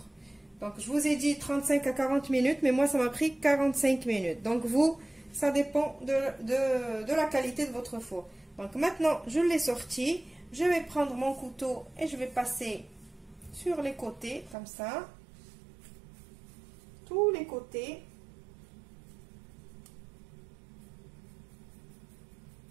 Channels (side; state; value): left; drops out; at 14.6 s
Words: Donc, je vous ai dit 35 à 40 minutes, mais moi, ça m'a pris 45 minutes. Donc, vous, ça dépend de la qualité de votre four. Donc, maintenant, je l'ai sorti. Je vais prendre mon couteau et je vais passer sur les côtés, comme ça. Tous les côtés.